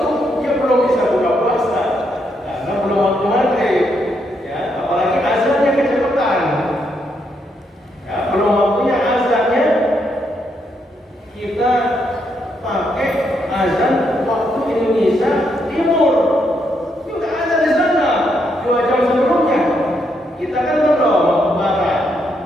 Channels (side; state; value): both; normal; correlation 0.77